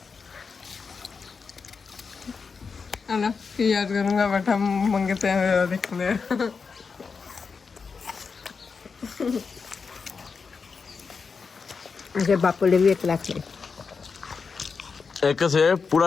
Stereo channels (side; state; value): right; quieter; 5.2 dB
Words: ਨਾ ਕੀ ਯਾਦ ਕਰੂੰਗਾ ਬੈਠਾ ਮੰਗਤੇ हैं देखने। अरे बापू ने भी 1 लाख ले ਇੱਕ ਸੇ